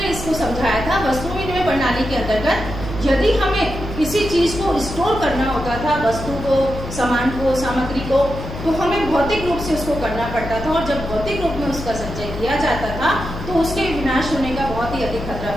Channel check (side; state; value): left; noise; hum, 9 dB below the sound